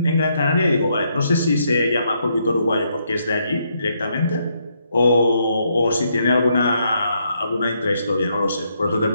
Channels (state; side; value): inverted; both; correlation -0.76